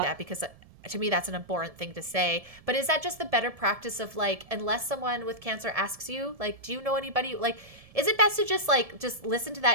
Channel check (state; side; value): late; left; 1.7 ms